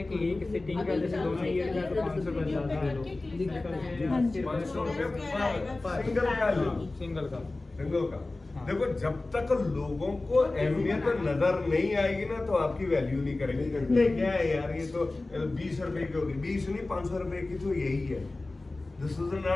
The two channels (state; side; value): quieter; right; 3.1 dB